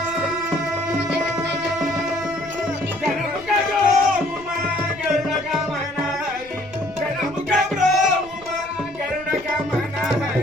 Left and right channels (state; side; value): noise; left; rumble, 22 dB below the sound